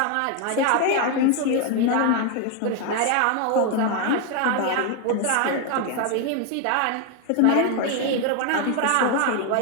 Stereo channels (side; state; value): both; different; correlation 0.01